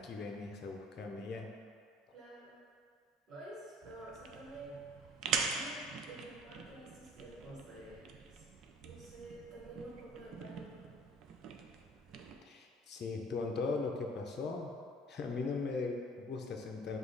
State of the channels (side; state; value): both; normal; correlation 0.52